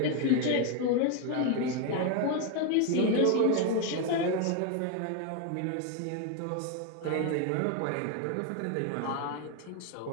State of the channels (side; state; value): both; different; correlation 0.01